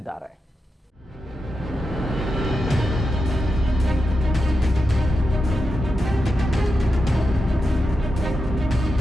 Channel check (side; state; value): both; normal; correlation 0.88